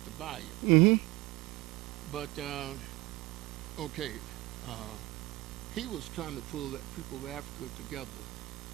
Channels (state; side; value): quieter; left; 19.9 dB